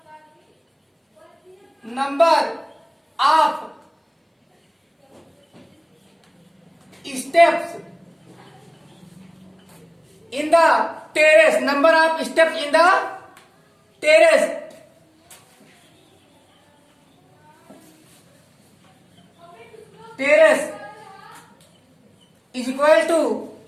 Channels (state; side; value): identical; both; correlation 1.00